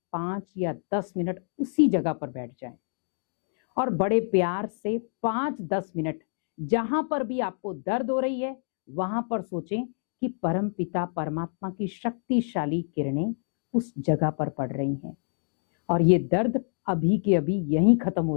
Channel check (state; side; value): silent; right; 60 dB below the other